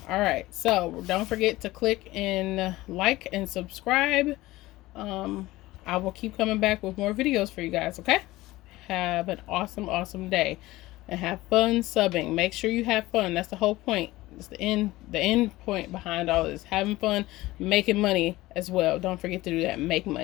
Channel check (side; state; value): right; quieter; 18.3 dB